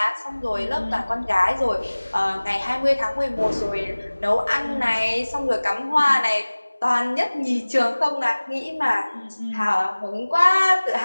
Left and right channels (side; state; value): both; inverted; correlation -1.00